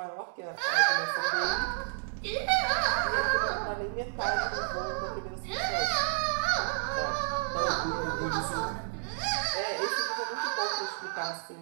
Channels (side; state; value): left; silent; digital silence